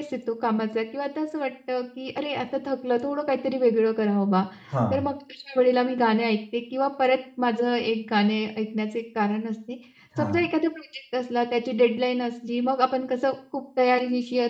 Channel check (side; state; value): both; identical; correlation 1.00